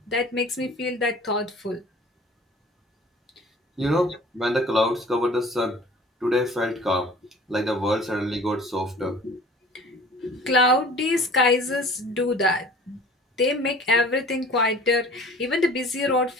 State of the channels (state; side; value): normal; both; correlation 0.46